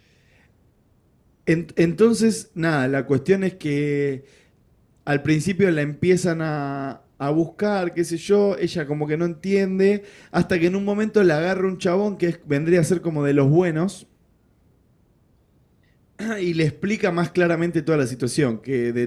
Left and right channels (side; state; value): both; identical; correlation 1.00